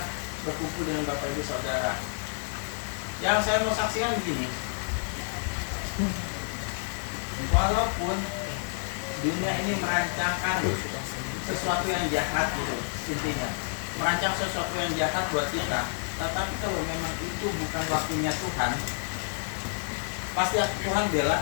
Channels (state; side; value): silent; right; digital silence